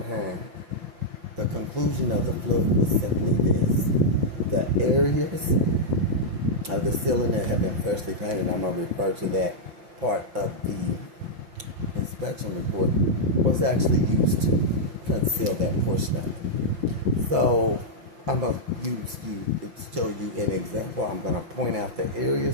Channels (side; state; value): left; late; 5.8 ms